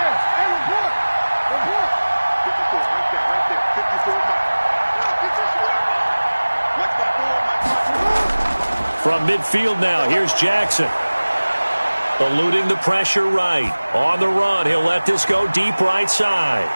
From midfield now, here's Jackson. Eluding the pressure right. On the run, he'll let this go deep right side.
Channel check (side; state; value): both; inverted; correlation -1.00